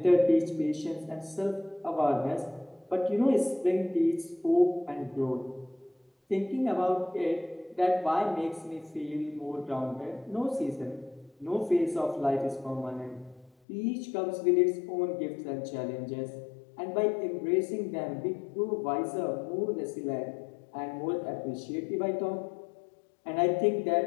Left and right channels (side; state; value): right; drops out; at 13.5 s